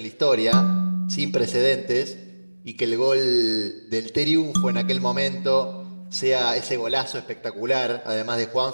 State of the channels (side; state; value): both; inverted; correlation -1.00